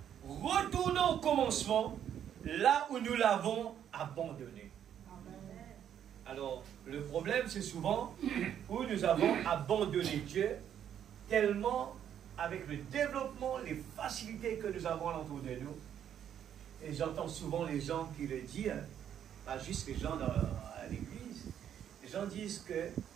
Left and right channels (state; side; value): quieter; left; 9.6 dB